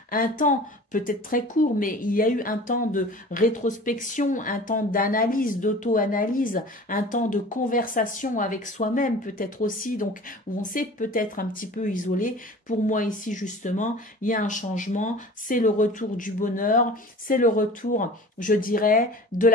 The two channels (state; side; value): normal; both; correlation 0.41